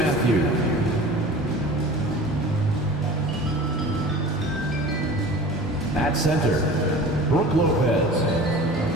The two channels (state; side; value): normal; both; correlation 0.40